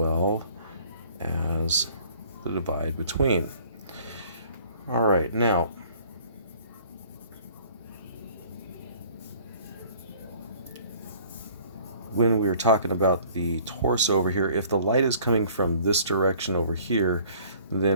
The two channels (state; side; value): inverted; both; correlation -0.54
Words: as the divide between. All right, now when we were talking about the torso over here, if the light is coming from this direction over here,